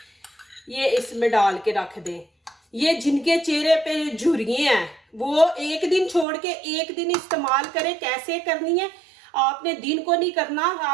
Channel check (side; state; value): left; drops out; at 6.2 s